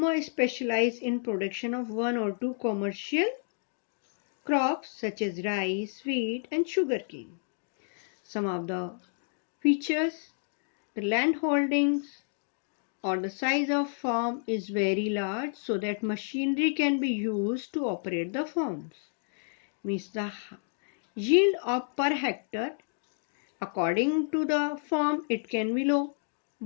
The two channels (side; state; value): right; silent; digital silence